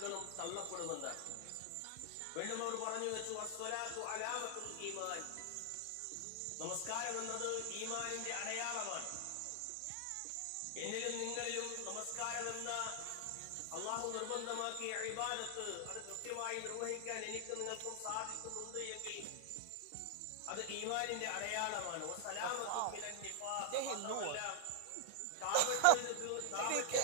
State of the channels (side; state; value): both; different; correlation 0.00